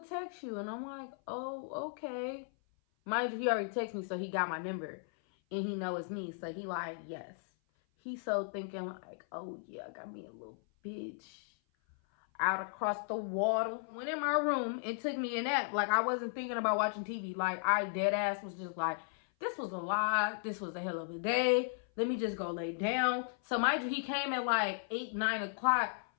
text you. And I'm like, oh, okay. Mind you, he already texted me, so he got my number. And he know it's me, so he like, yes. He so thinking like, oh yeah, I got me a little bitch out across the water. Went in my room and took me a nap. Like, I wasn't thinking about watching TV. Like, I dead ass was just like, this was a lie. This was a hell of a day. Let me just go lay down. So mind you, he came at like 8, 9 o'clock.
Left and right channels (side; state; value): right; silent; 54 dB below the other